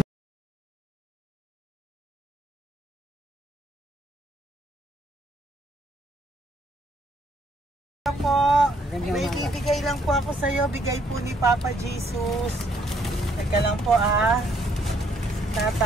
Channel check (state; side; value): normal; both; correlation 0.68